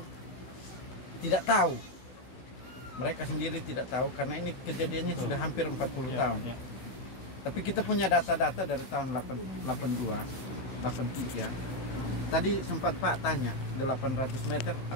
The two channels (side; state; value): right; late; 16 ms